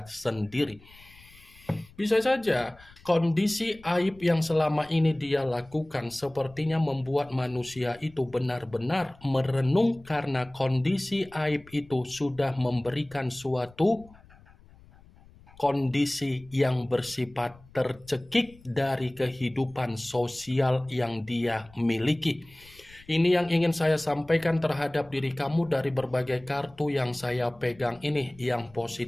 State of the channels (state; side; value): noise; left; rumble, 25 dB below the sound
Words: sendiri. Bisa saja kondisi aib yang selama ini dia lakukan sepertinya membuat manusia itu benar-benar merenung karena kondisi aib itu sudah memberikan suatu kondisi yang bersifat tercekik dari kehidupan sosial yang dia miliki. Ini yang ingin saya sampaikan terhadap diri kamu dari berbagai kartu yang saya pegang ini. Yang